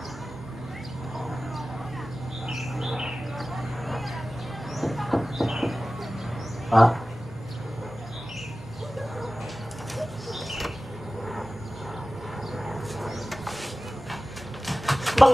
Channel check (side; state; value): both; normal; correlation 0.96